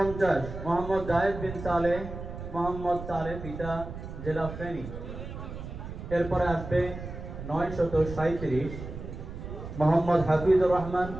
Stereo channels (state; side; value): noise; right; rumble, 9 dB below the sound